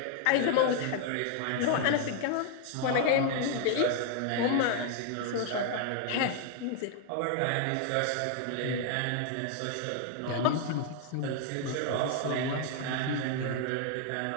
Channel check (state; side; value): different; both; correlation 0.00